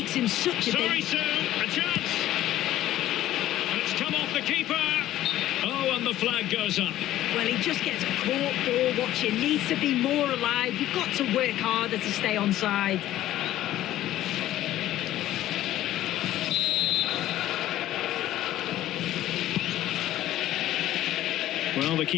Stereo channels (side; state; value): right; quieter; 13.8 dB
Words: him such a... Sorry, Sue, a chance! And it's come off the keeper! Oh, and the flag goes up. Well, he just gets caught ball watching. Needs to be more alive. You've got to work harder to stay onside. Well, the